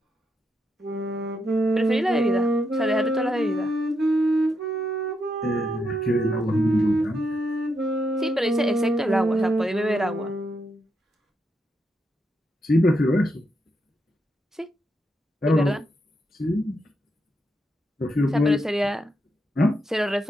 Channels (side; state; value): both; normal; correlation 0.81